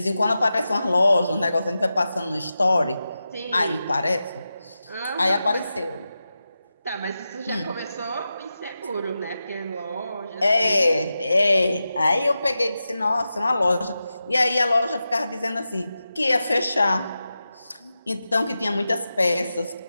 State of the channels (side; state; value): both; inverted; correlation -0.91